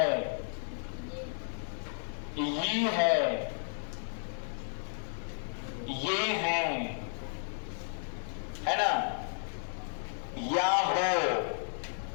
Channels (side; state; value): right; silent; 56 dB below the other